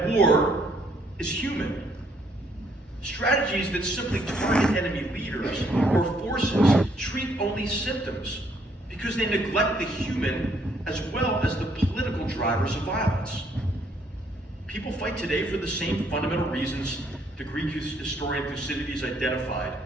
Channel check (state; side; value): normal; both; correlation 0.68